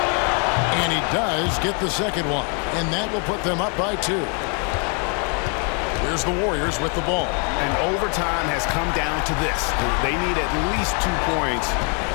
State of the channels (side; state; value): right; quieter; 38.3 dB